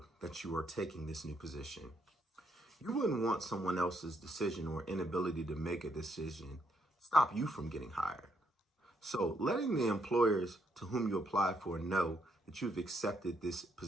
that you are taking this new position. You wouldn't want someone else's decision or inability to make a decision stop you from getting hired. So letting the employers to whom you apply for know that you've accepted this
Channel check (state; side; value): normal; both; correlation 0.74